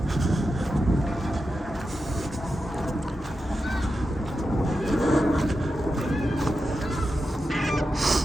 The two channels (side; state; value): both; normal; correlation 0.89